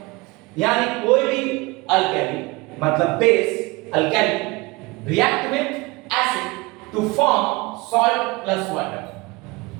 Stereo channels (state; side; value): quieter; left; 24.0 dB